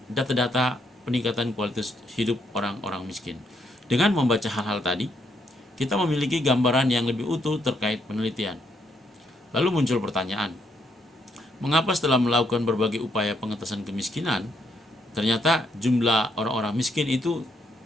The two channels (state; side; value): normal; both; correlation 0.74